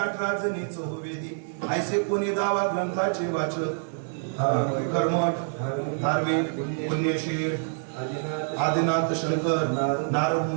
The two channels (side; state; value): left; silent; digital silence